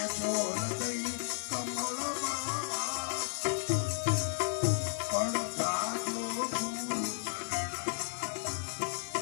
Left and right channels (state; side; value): silent; right; digital silence